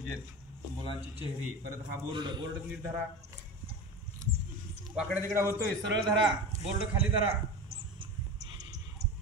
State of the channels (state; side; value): normal; both; correlation 0.28